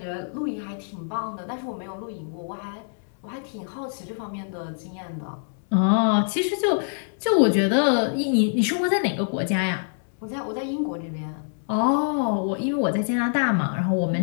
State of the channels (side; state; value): right; silent; 62 dB below the other